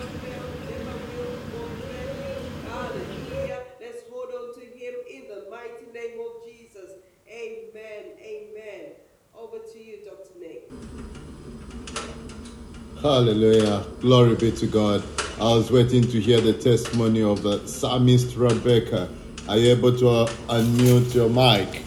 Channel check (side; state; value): both; identical; correlation 1.00